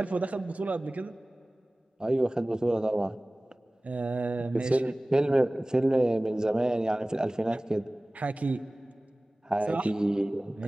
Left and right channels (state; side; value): normal; both; correlation 0.98